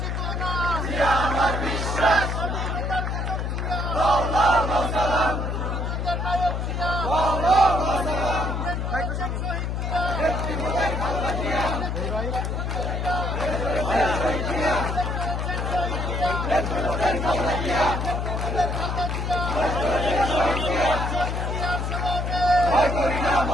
আমার বিশ্বাস। সালাম ভয় করি না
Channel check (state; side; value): noise; left; hum, 1 dB below the sound